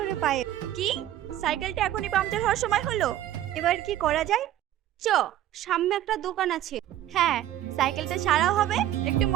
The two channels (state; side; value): quieter; left; 12.6 dB